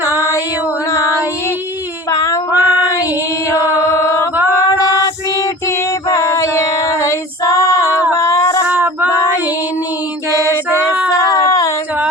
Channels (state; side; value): normal; both; correlation 0.39